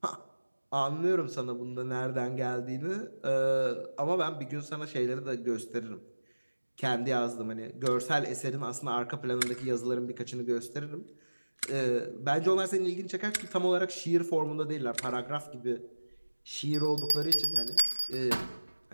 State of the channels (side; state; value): both; inverted; correlation -1.00